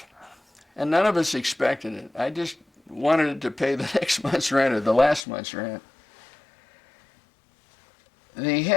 and none of us expected it. I just wanted it to pay the next month's rent or the last month's rent. The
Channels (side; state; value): right; drops out; at 5.2 s